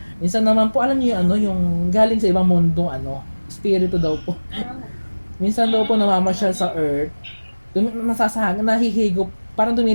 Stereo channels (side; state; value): both; inverted; correlation -1.00